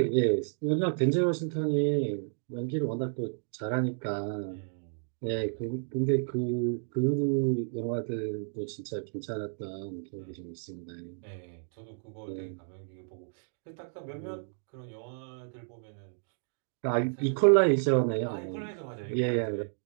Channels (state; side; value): silent; left; digital silence